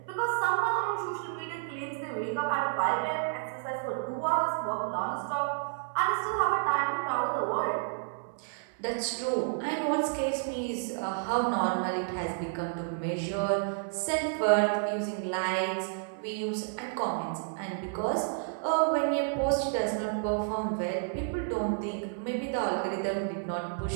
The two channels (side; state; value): left; silent; 57 dB below the other